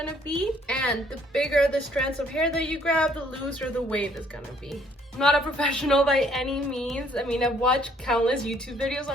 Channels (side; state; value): both; normal; correlation 0.63